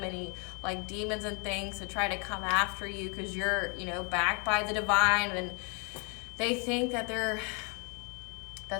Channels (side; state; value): right; quieter; 35.1 dB